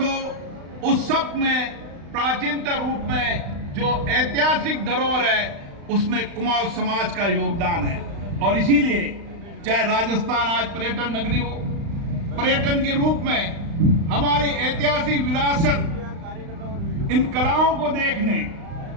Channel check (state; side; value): late; left; 35 ms